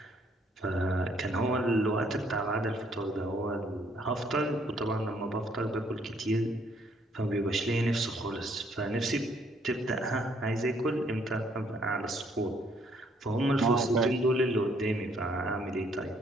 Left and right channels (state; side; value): normal; both; correlation 0.66